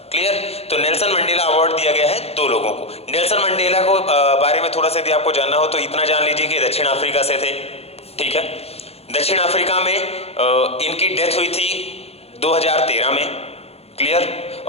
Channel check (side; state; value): right; late; 0.29 ms